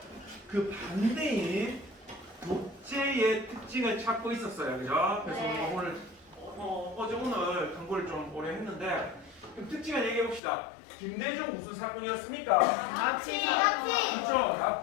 그 반대인 독재의 특징을 찾고 있었어요. 그죠? 그래서 오늘 오늘 공부를 좀 오래 했는데 그럼 특징을 얘기해 봅시다. 김대중 무슨 사건이었습니까? 납치. 그렇죠.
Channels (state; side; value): drops out; right; at 10.4 s